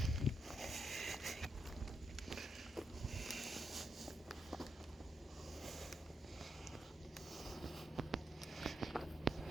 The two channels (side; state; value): both; normal; correlation 0.82